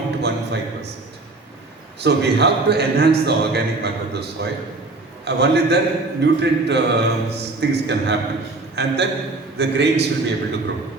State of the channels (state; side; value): quieter; left; 3.2 dB